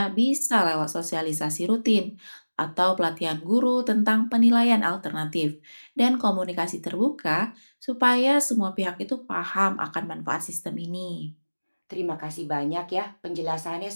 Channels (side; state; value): both; inverted; correlation -1.00